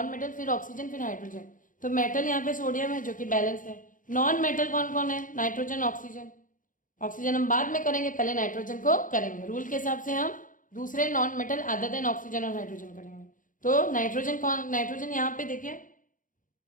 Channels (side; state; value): right; late; 0.39 ms